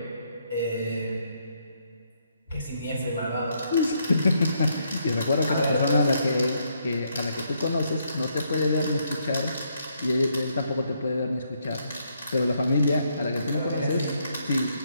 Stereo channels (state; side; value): inverted; both; correlation -0.74